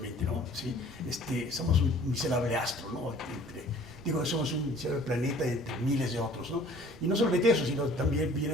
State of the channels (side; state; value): right; noise; rumble, 21 dB below the sound